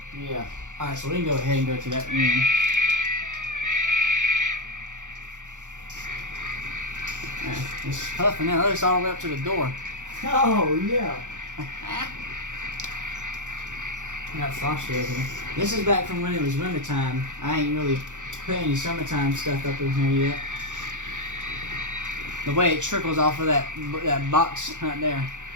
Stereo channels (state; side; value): late; left; 0.86 ms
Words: Yeah. Alright, so we can go ahead and go to that room. It's puffing out. It's all the way up to the door. Oh, yeah. I got frosty over here. This is back from when it was wintertime. I ain't really put any summertime stuff up in here yet. The way it trickles off of that box right there,